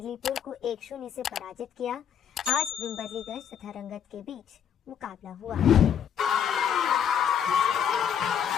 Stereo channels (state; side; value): quieter; right; 8.5 dB